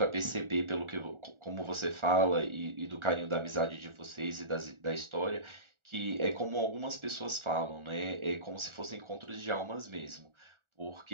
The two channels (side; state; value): left; late; 1.4 ms